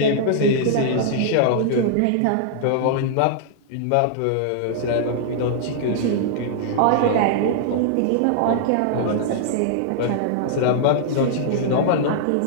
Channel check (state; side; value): different; both; correlation -0.01